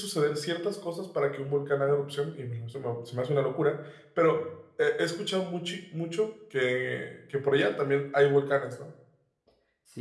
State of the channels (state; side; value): identical; both; correlation 1.00